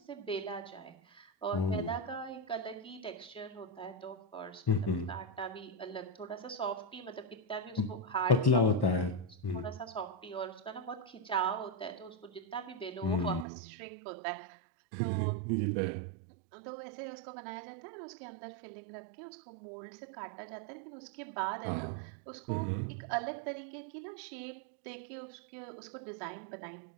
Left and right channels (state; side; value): drops out; left; at 13.5 s